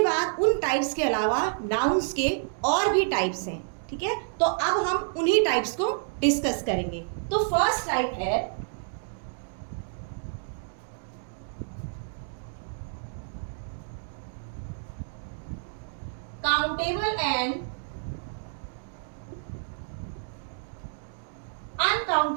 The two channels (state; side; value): silent; left; digital silence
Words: बाद उन टाइप्स के अलावा नाउन्स के और भी टाइप्स हैं, ठीक है। तो अब हम उन्हीं टाइप्स को डिस्कस करेंगे। तो फर्स्ट टाइप है countable and